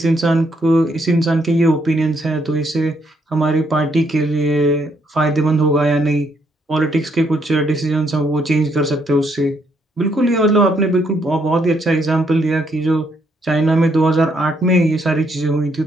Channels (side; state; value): both; normal; correlation 0.73